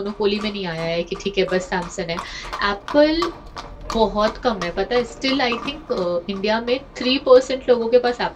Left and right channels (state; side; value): identical; both; correlation 1.00